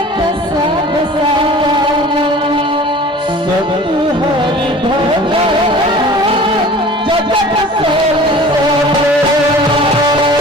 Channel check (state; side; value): normal; both; correlation 0.43